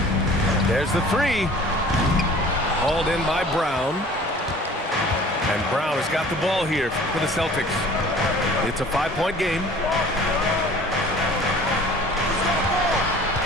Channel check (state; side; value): normal; both; correlation 0.47